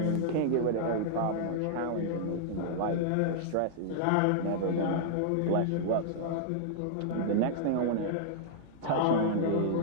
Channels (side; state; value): both; different; correlation -0.01